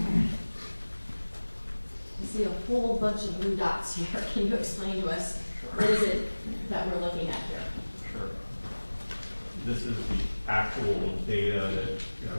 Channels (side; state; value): both; inverted; correlation -1.00